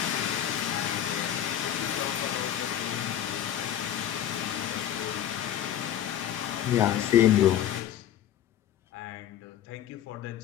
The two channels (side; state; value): right; quieter; 10.9 dB